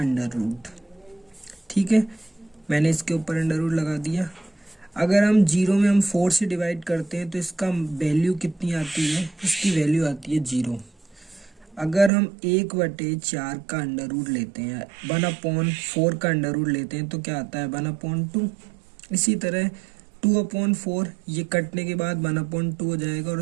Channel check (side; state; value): left; drops out; at 12.1 s